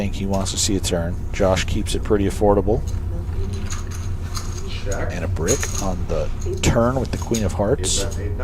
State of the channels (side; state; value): both; identical; correlation 1.00